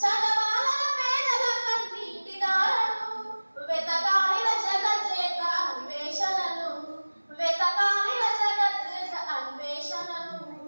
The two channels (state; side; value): inverted; both; correlation -1.00